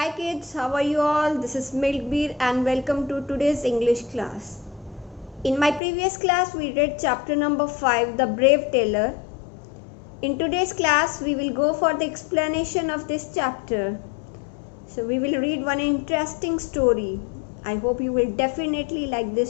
kids, how are you all? This is Milkbeer and welcome to today's English class. In my previous class, we read chapter number 5, The Brave Tailor. In today's class, we will go for the explanation of this chapter. So we will read one interesting story. I hope you will definitely like this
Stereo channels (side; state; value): right; drops out; at 5.8 s